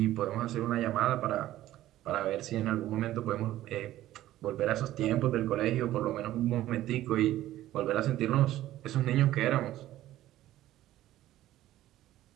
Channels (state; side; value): quieter; left; 14.3 dB